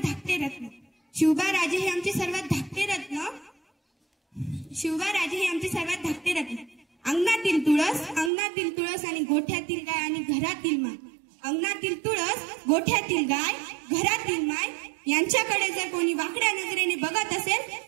धाकटे रत्न, शिवबाराजे हे आमचे सर्वात धाकटे रत्न, शिवबाराजे हे आमचे सर्वात धाकटे रत्न। अंगणातील तुळस आणि गोठ्यातील गाय आणि घरातील माय, अंगणातील तुळस, गोठ्यातील गाय, घरातील माय यांच्याकडे जर कोणी वाकड्या नजरेने बघत असेल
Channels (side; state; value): left; drops out; at 8.3 s